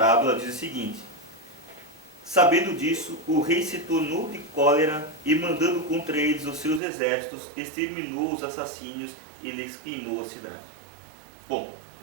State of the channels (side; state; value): left; drops out; at 6.8 s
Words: diz o seguinte: sabendo disso, o rei se tornou de cólera e, mandando contra eles os seus exércitos, exterminou os assassínios e lhes queimou a cidade. Bom,